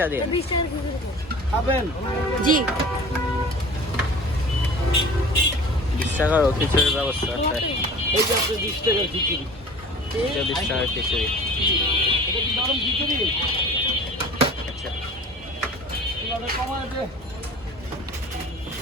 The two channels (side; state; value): both; normal; correlation 0.42